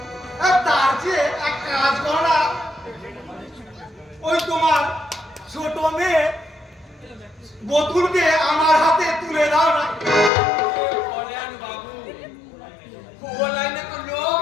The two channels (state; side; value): drops out; right; at 10.3 s